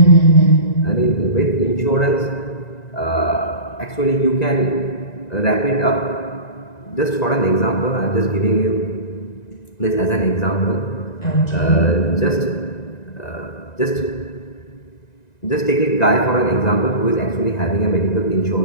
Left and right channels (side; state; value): right; late; 1.9 ms